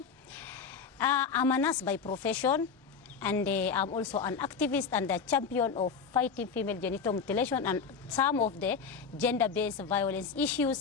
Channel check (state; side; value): quieter; right; 5.8 dB